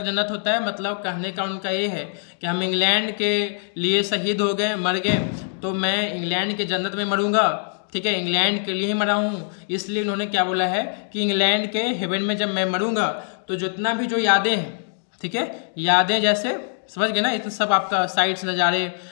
जन्नत होता है, मतलब कहने का उनका ये है कि हम इंग्लैंड के लिए शहीद हो गए, मर गए, तो मैं इंग्लैंड की जन्नत में मरूंगा, ठीक है, इंग्लैंड के लिए ही मरा हूँ। इसलिए उन्होंने क्या बोला है कि इंग्लैंड के हेवन में जब मैं मरूंगा तो जितना भी जो यादें हैं, ठीक है, यादें जैसे समझ गए ना, इतना सब आपका साइट्स नज़ारे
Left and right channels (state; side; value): silent; right; digital silence